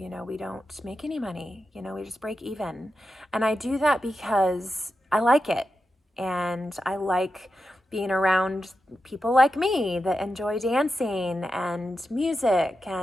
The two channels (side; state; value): both; normal; correlation 0.89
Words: we don't make any money, we just break even. And I do that because I like it. And I like being around people like me that enjoy dancing and music